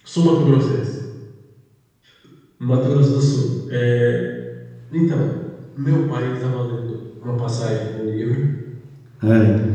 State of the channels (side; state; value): both; identical; correlation 1.00